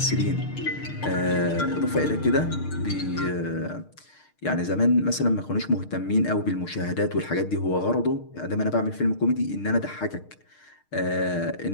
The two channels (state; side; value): late; right; 6.5 ms